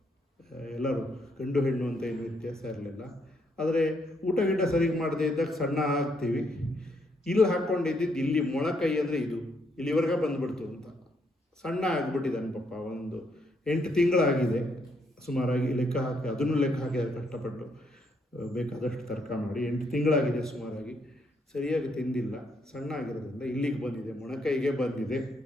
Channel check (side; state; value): both; normal; correlation 0.74